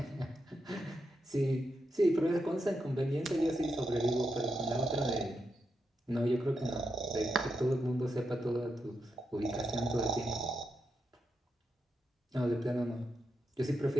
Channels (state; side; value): normal; both; correlation 0.85